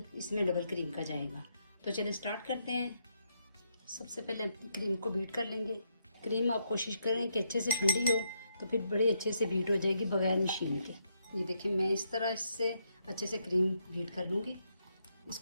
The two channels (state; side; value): inverted; both; correlation -0.78